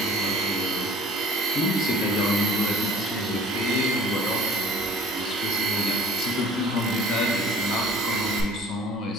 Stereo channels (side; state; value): both; normal; correlation 0.49